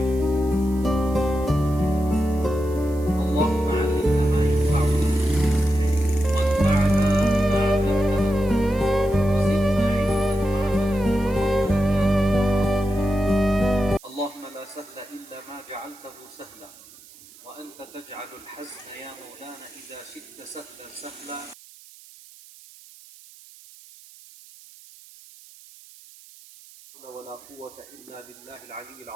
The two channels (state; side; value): noise; right; hiss, 22 dB below the sound